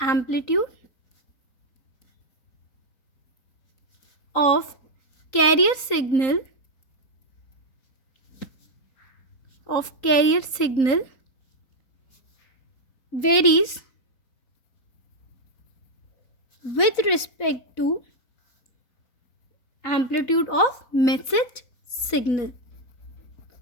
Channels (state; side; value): late; right; 3.9 ms